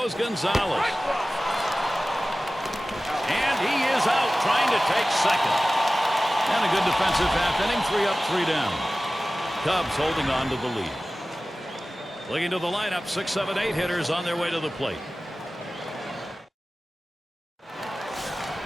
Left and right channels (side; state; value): both; normal; correlation 0.97